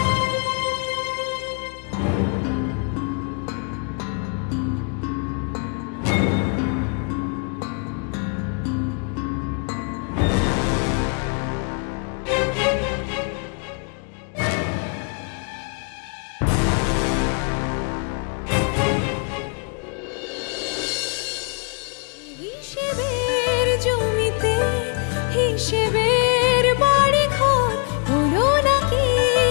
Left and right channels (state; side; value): quieter; right; 38.5 dB